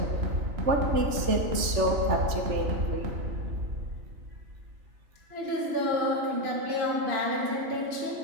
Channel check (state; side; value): late; left; 3.3 ms